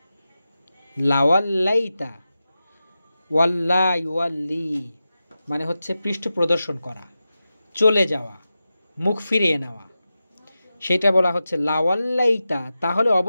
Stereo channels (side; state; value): both; inverted; correlation -0.93